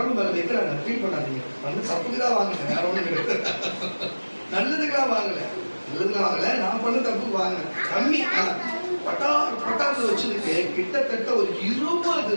மேல வைக்கிறாங்க. ஃபீல் பண்ணாதீங்க, வந்து தப்புக்குதான் வாங்குங்க, வேற ஒண்ணு நல்லதுக்கெல்லாம் வாங்கல, நான் பண்ண தப்பு வாங்க கம்மி. பட்டார் பட்டார்னு வச்சிருக்கு. கிட்டத்தட்ட ஒரு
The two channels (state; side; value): inverted; both; correlation -1.00